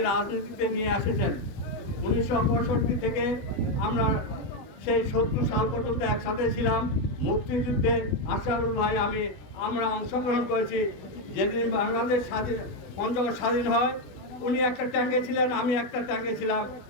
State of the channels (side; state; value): right; late; 20 ms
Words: রাজনীতিতে নিয়ে এসেছেন। 1965 থেকে আমরা সেই 70 সাল পর্যন্ত একসাথে ছিলাম। মুক্তিযুদ্ধে আশরাফুল ভাই আমরা অংশগ্রহণ করেছি। যেদিন বাংলাদেশ পঞ্চগড় স্বাধীন হয়, উনি একটা ট্যাঙ্কে ছিলেন, আমি একটা ট্যাঙ্কে ছিলাম।